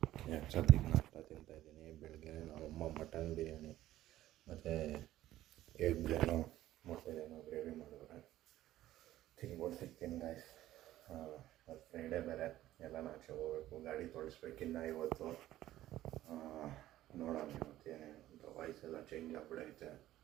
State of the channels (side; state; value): left; quieter; 14.3 dB